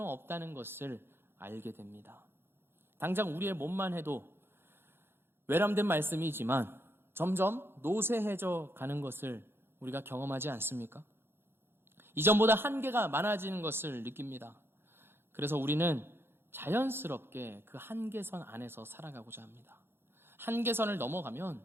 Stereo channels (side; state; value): left; late; 0.11 ms